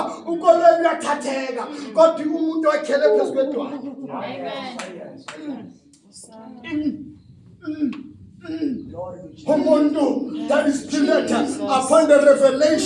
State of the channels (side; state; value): both; identical; correlation 1.00